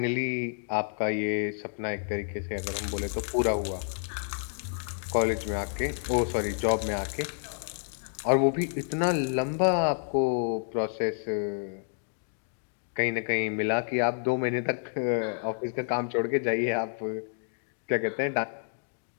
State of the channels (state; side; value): silent; right; digital silence